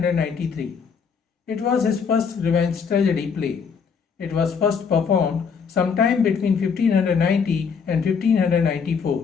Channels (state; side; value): quieter; right; 6.1 dB